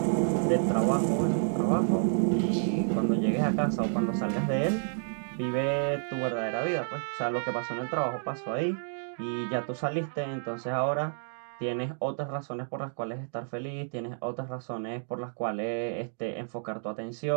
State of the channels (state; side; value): silent; left; digital silence